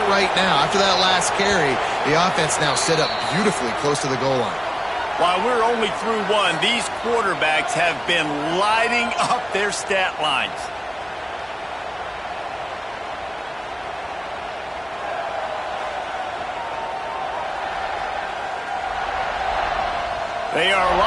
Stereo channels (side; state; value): both; identical; correlation 1.00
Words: right now. After that last carry, the offense now set up beautifully close to the goal line. While we're only through 1, these quarterbacks have been lighting up their stat lines. They are